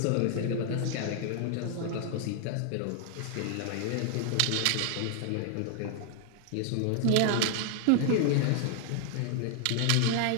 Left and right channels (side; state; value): both; different; correlation 0.00